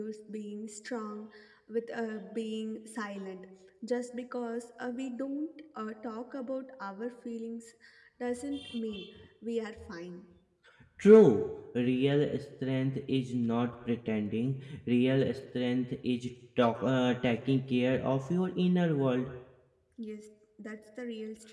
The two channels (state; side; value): identical; both; correlation 1.00